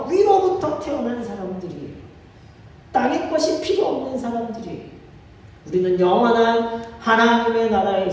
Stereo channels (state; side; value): identical; both; correlation 1.00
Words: 위로부터 태어난 사람들이에요. 땅의 것이 필요 없는 사람들이에요. 우리는 영원한 하나님의